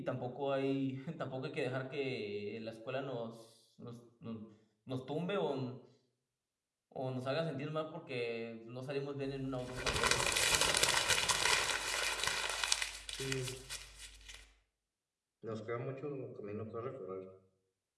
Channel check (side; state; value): both; identical; correlation 1.00